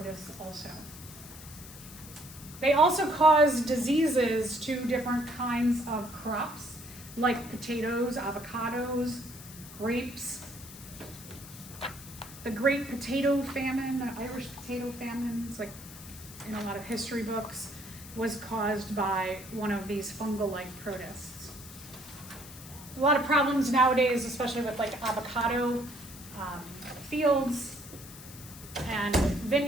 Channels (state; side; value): noise; left; hiss, 16 dB below the sound